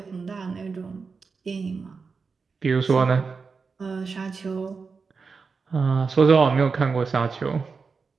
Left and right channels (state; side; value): quieter; left; 4.9 dB